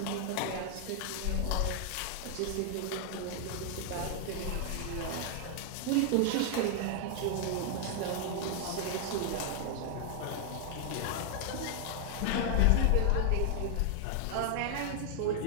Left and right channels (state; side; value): different; both; correlation 0.00